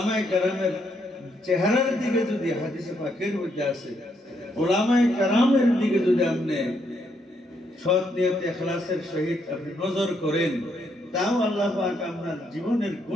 কেরামের চেহারার দিকে যদি হাদিসে পাকের মধ্যে আছে, ওলামায়ে কেরামের দিকে যদি আপনি সৎ নিয়তে ইখলাসের সহিত আপনি নজর করেন, তাও আল্লাহ পাক আপনার জীবনের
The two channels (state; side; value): normal; both; correlation 0.75